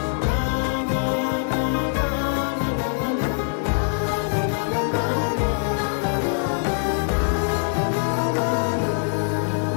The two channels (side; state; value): right; silent; digital silence